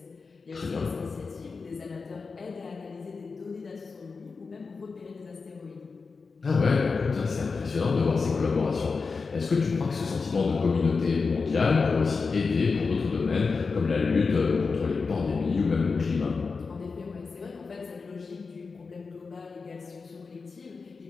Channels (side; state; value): right; quieter; 4.6 dB